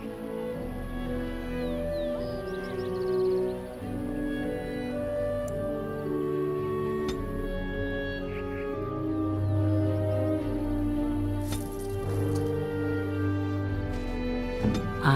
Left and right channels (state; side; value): identical; both; correlation 1.00